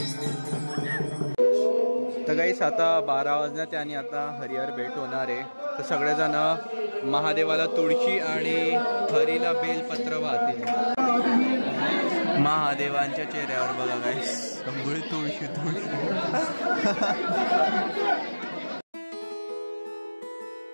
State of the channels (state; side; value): inverted; both; correlation -1.00